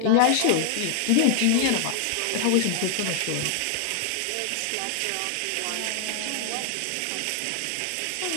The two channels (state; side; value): different; both; correlation 0.00